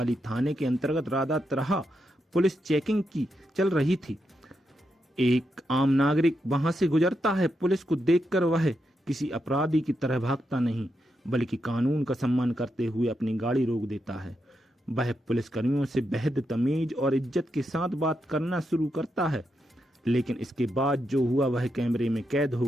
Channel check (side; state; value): both; normal; correlation 0.84